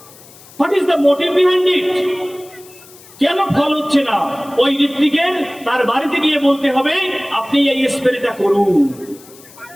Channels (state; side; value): noise; left; hiss, 22 dB below the sound